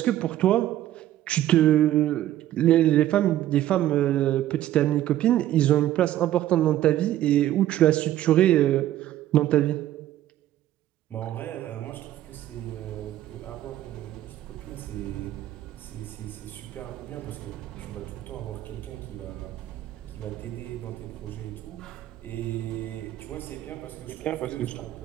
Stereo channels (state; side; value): quieter; left; 13.1 dB